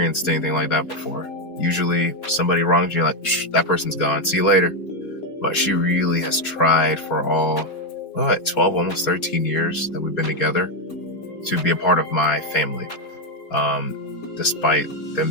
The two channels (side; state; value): right; late; 4.3 ms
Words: anything like that before. Usually somebody wrongs you, like, that person's gone, see you later. But she really has tried for all 12, almost 13 years that we've been together to be a part of my family, despite